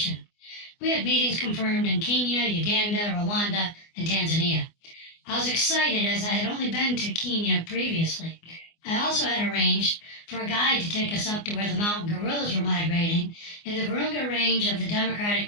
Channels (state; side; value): late; right; 24 ms